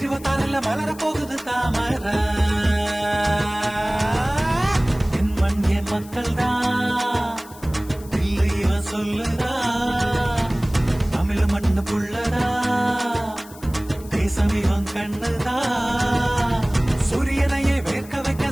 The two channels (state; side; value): noise; left; hiss, 20 dB below the sound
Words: மலர போகுது தாமர என் மண் என் மக்கள்டா இல்லைய சொல்லுதா தமிழ் மண்ணு புள்ளடா தேசம் இவன் கண்ணுதா சூரியனையே வேர்க்க வைக்க